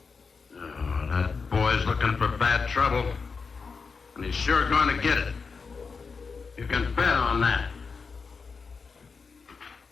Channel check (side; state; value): right; quieter; 5.0 dB